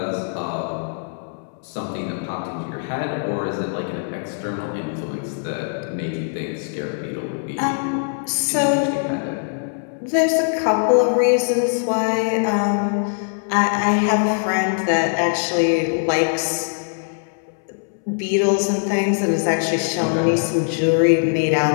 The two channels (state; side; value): silent; right; 65 dB below the other